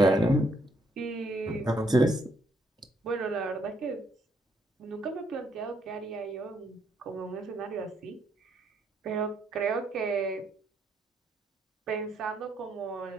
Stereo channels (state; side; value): normal; both; correlation 0.73